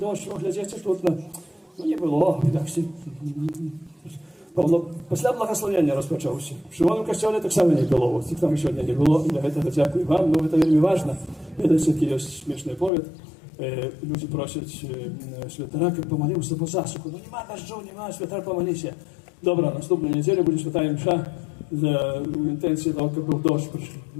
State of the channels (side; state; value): right; drops out; at 12.9 s